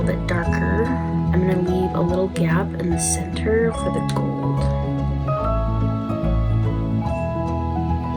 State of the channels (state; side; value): identical; both; correlation 1.00